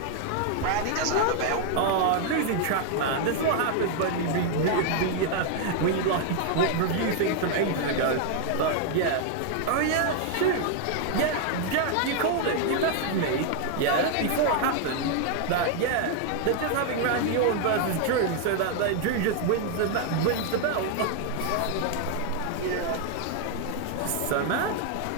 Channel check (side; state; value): both; different; correlation 0.00